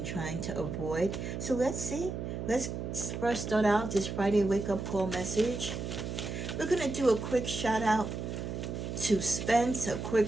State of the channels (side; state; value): right; noise; hum, 5 dB below the sound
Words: trying to avoid. So let's see. Let's first start out this Friday wake-up call message. We're going to do a quick shout out to Spence, a